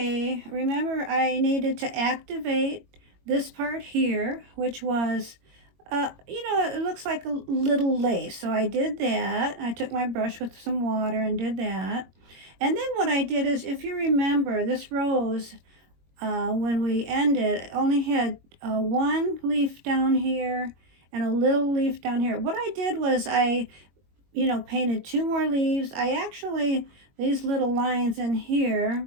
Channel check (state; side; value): late; left; 21 ms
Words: remember I needed to activate this part here, which was it looks like a little lace. So I did that. I took my brush with some water and did that. And then what I did is, if you remember, this rose, when we ended, only had one leaf down here and a little leaf down here. What I did was painted two more leaves. These little lines in here